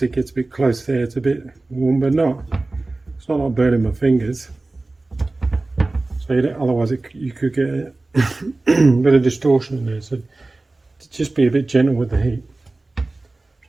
it gets a bit close there. It's a bit warm, but not. It's not like burning my fingers. So you don't, otherwise, you could get a bit of distortion in there. So just be a bit gentle with the heat. So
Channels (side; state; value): left; quieter; 3.1 dB